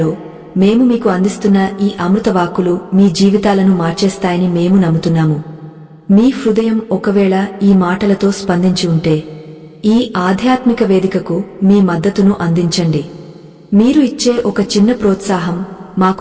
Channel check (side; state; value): both; identical; correlation 1.00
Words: మేము మీకు అందిస్తున్న ఈ అమృతవాక్కులు మీ జీవితాలను మార్చేస్తాయని మేము నమ్ముతున్నాము. మీ హృదయం ఒకవేళ ఈ మాటలతో స్పందించి ఉంటే ఈ ఆధ్యాత్మిక వేదికకు మీ మద్దతును అందించండి. మీరు ఇచ్చే ఒక చిన్న ప్రోత్సాహం